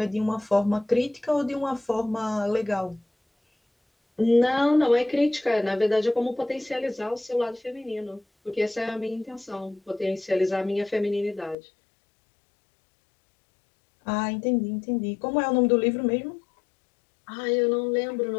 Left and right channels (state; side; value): drops out; right; at 11.6 s